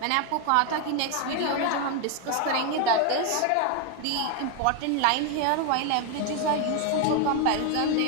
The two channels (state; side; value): different; both; correlation 0.01